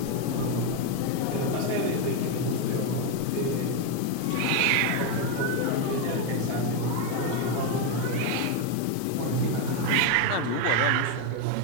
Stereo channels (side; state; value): both; different; correlation 0.02